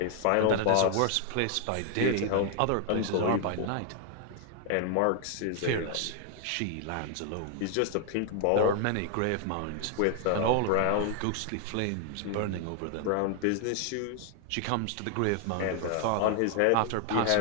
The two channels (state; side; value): different; both; correlation 0.00